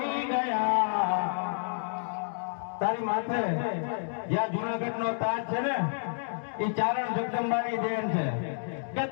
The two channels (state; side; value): silent; right; digital silence